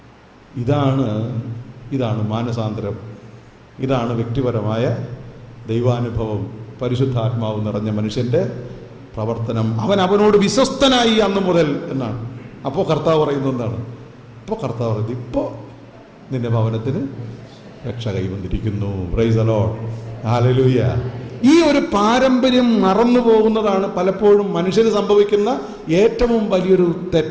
ഇതാണ് മാനസാന്തരം. ഇതാണ് വ്യക്തിപരമായ ദൈവാനുഭവം. പരിശുദ്ധാത്മാവ് നിറഞ്ഞ മനുഷ്യൻ്റെ പ്രവർത്തനം. അവനോട് വിശ്വസ്തനായി അന്ന് മുതൽ എന്നാണ്. അപ്പോൾ കർത്താവ് പറയുന്നത് എന്താണ്? അപ്പോൾ കർത്താവ് പറയുന്നത്, ഇപ്പോൾ നിന്റെ ഭവനത്തിന് രക്ഷ കൈവന്നിരിക്കുന്നു. Praise the Lord, hallelujah. ഈ ഒരു പാരമ്പര്യം മറന്നു പോകുന്നതാണ് പലപ്പോഴും മനുഷ്യന് സംഭവിക്കുന്ന ഏറ്റവും വലിയൊരു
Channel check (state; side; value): identical; both; correlation 1.00